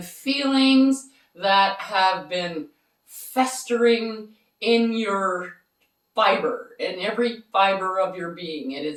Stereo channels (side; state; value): both; identical; correlation 1.00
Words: feelings that have been festering in your fiber, in every fiber of your being. It